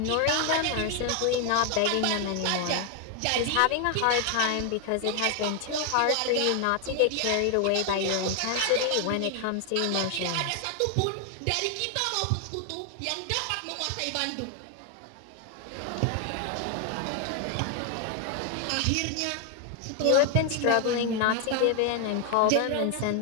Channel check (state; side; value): different; both; correlation 0.01